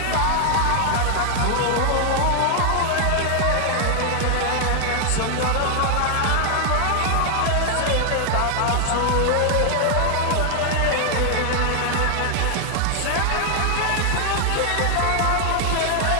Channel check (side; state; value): both; different; correlation 0.00